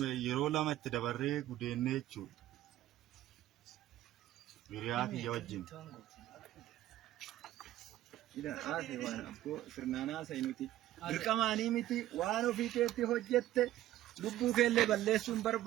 yeroo lama itti dabarree gudeennee jechuudha. Hiriyaa kiyya wajjin. ida ase waan abbo sirnaanaa saynuti dirqamaanii miti waan ofii keetti hojjette lubbuu keellee balleessuun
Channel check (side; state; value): left; quieter; 14.1 dB